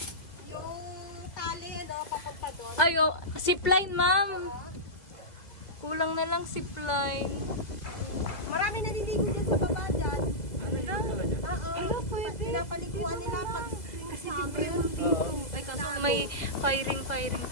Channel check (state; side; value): late; right; 2.0 ms